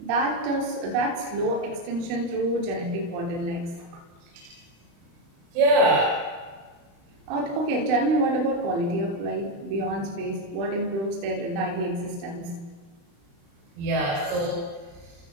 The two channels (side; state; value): left; late; 35 ms